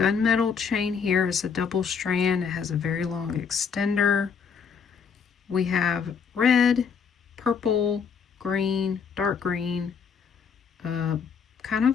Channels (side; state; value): right; quieter; 6.4 dB